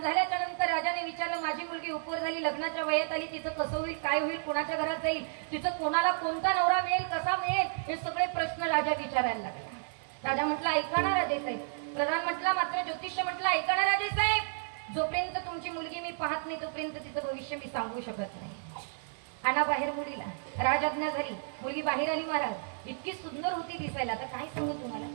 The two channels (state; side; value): silent; left; 56 dB below the other